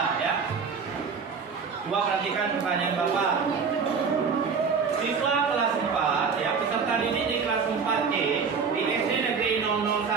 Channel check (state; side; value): quieter; left; 5.6 dB